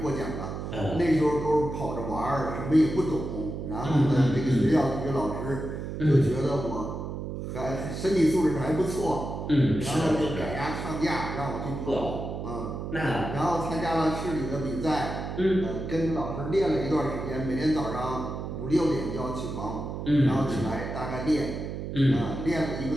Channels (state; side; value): noise; right; hum, 6 dB below the sound